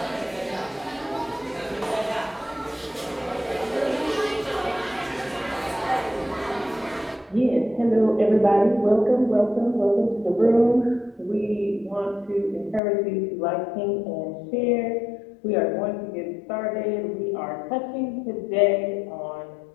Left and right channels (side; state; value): right; drops out; at 12.8 s